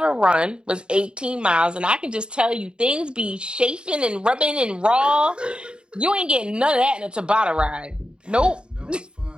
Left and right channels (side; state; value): left; late; 0.051 ms